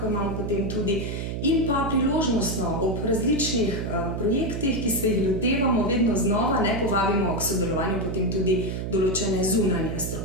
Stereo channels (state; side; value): noise; right; hum, 4 dB below the sound